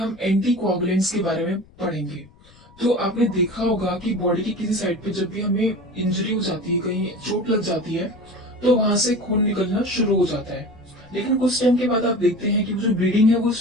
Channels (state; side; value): noise; left; rumble, 26 dB below the sound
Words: एंटी कोआगुलेंट्स के बारे में पढ़ेंगे। तो आपने देखा होगा कि बॉडी की किसी साइड पे जब भी हमें इंजरी हो जाती है, कहीं चोट लग जाती है, तो वहां से खून निकलना शुरू हो जाता है। लेकिन कुछ टाइम के बाद आप देखते हैं कि जो ब्लीडिंग है वो